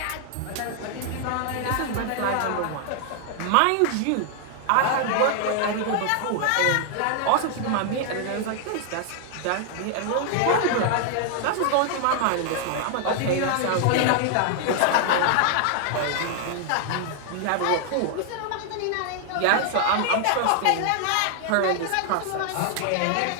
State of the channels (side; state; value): both; different; correlation 0.00